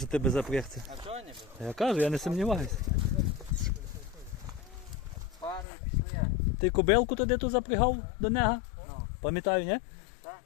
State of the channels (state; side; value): drops out; right; at 5.7 s